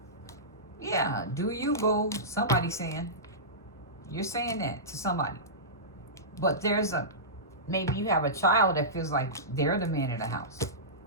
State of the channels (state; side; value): normal; both; correlation -0.17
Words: Yeah, do you, boo? Somebody saying. You're saying that to somebody. But there's maybe you have a child that feels like they're the man of the house.